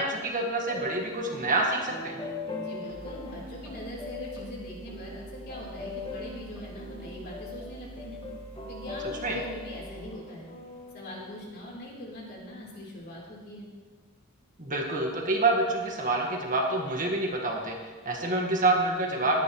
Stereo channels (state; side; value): normal; both; correlation 0.01